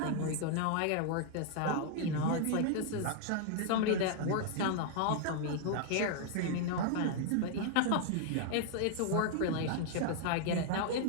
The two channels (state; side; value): different; both; correlation 0.00